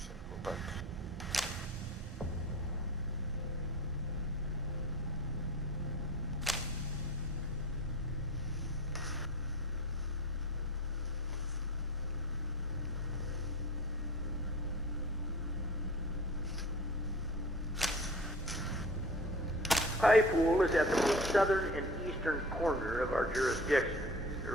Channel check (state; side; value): normal; both; correlation 0.39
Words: Highpool is at the most southern and eastern corner of our jurisdiction. They're